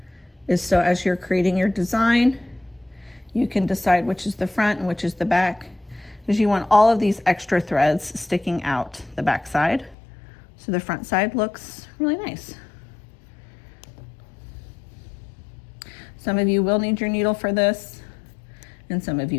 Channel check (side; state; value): right; drops out; at 10.0 s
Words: is so as you're creating your design, you can decide which is the front and which is the back, because you want all of these extra threads sticking out the back side so the front side looks really nice. Some of you will need your needle for this and some of